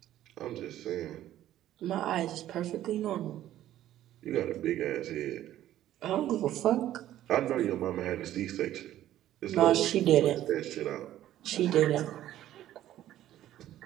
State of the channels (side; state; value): left; quieter; 13.0 dB